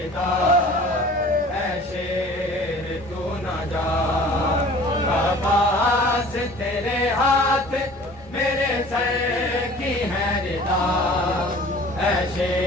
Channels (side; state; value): both; normal; correlation 0.46